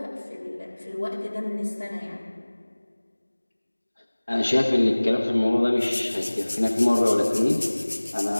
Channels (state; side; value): inverted; both; correlation -1.00